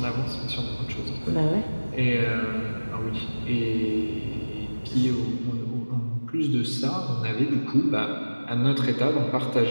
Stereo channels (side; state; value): both; inverted; correlation -1.00